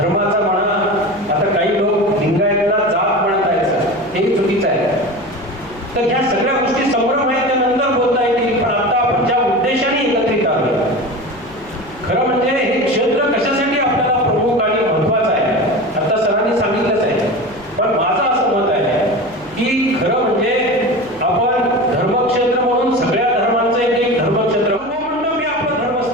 म्हणा, आता काही लोक लिंगायतला जात म्हणत आहेत, हे चुकीचं आहे. तर ह्या सगळ्या गोष्टी संभ्रम आहेत त्या नंतर बोलता येतील, पण आता आपण ज्या उद्देशाने एकत्रित आलो, खरं म्हणजे हे क्षेत्र कशासाठी आपल्याला प्रमुख आणि महत्वाचं आहे आता सरांनी सांगितलंच आहे. पण माझं असं मत आहे की खरं म्हणजे आपण धर्मक्षेत्र म्हणून सगळ्या धर्मांचं एक धर्मक्षेत्र मंडप हे आपलं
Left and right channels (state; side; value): noise; left; hum, 26 dB below the sound